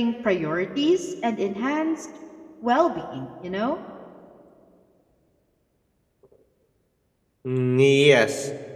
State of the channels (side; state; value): both; identical; correlation 1.00